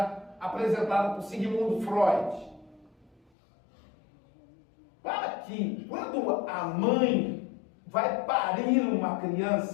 apresentada por Sigmund Freud. Para que, quando a mãe vai parir uma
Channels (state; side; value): drops out; right; at 3.2 s